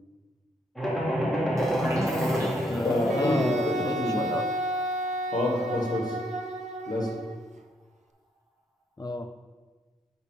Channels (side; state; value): both; normal; correlation 0.72